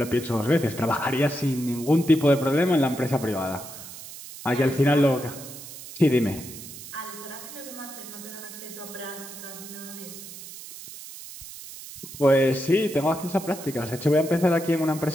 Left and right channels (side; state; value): right; noise; hiss, 13 dB below the sound